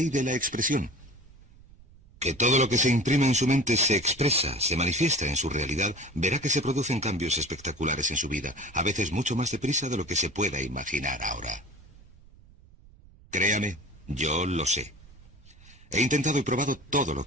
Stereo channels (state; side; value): noise; right; rumble, 24 dB below the sound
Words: de la expresión, que todo lo que se imprime en su mente se expresa, se manifiesta en su realidad, verá que se producen cambios espectaculares en su vida, a veces mucho más deprisa de lo que se pueda imaginar ahora. Créame, yo lo sé. He intentado y probado todo lo